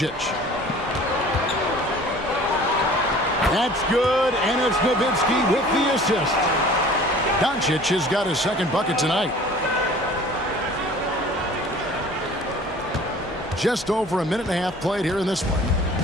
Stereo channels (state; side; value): normal; both; correlation 0.47